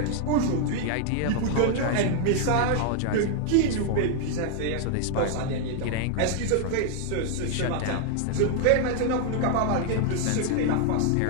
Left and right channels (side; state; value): both; different; correlation 0.00